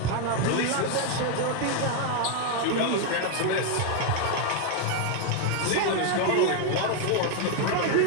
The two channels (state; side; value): different; both; correlation 0.01